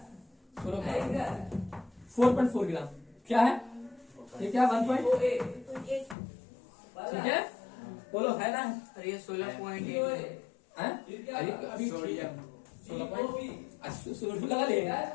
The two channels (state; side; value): drops out; right; at 6.2 s